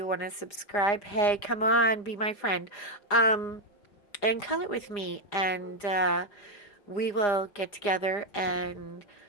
want to subscribe, hey, come on, be my friend. And color with me. And we will get together and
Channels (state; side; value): late; right; 4.9 ms